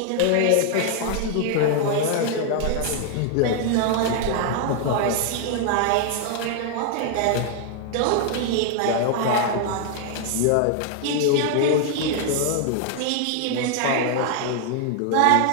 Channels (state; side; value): different; both; correlation 0.00